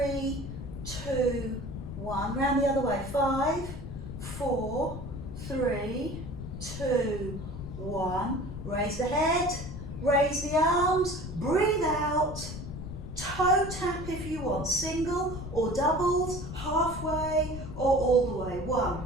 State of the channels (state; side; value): noise; left; rumble, 9 dB below the sound